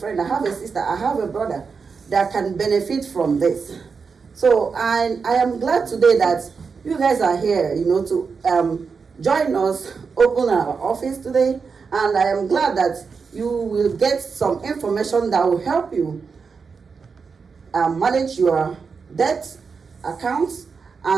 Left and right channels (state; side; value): quieter; left; 5.3 dB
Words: I have a sister, I have a brother that can benefit from this. So I am glad today that you guys are here, to join us, open our office today. And I am glad that you will get some information that will help you manage your debt accounts